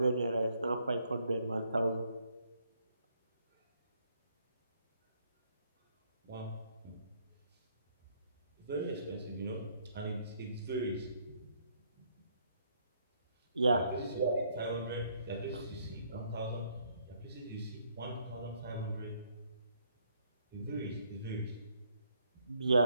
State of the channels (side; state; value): both; inverted; correlation -0.68